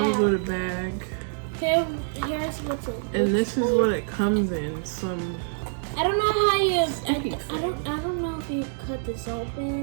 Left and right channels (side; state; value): left; silent; digital silence